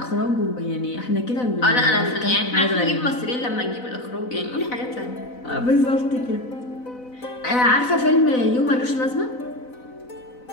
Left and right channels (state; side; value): late; right; 4.0 ms